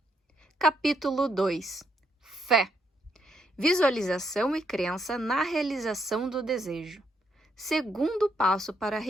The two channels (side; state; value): both; normal; correlation 0.76